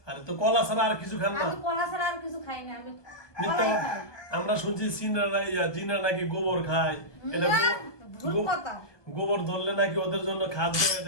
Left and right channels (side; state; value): right; late; 1.2 ms